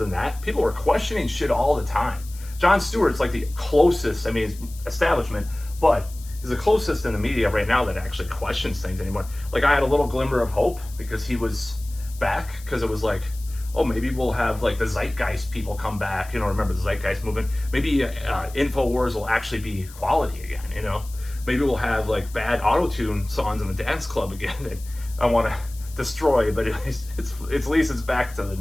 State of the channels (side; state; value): left; noise; hiss, 19 dB below the sound